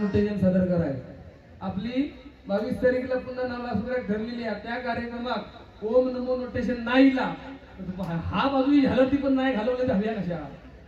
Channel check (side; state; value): both; identical; correlation 1.00